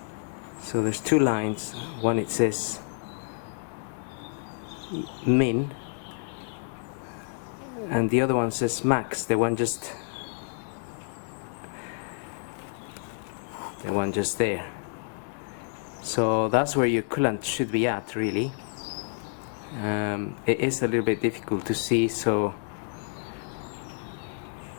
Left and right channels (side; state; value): right; silent; 56 dB below the other